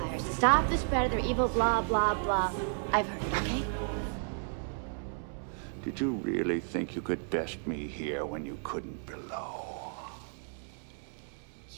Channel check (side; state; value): left; silent; 56 dB below the other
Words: to stop the spread of their evil blah, blah, blah. I've heard it, okay? Did you really think you could best me here when you couldn't below?